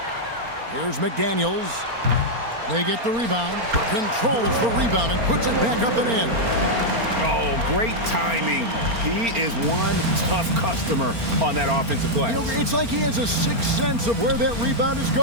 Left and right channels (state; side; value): late; left; 4.3 ms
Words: Here's McDaniels. They get the rebound, controls the rebound, and puts it back up and in. Oh, great timing. He is one tough customer on that offensive glass. You know, it's like he has a sixth sense of where that rebound is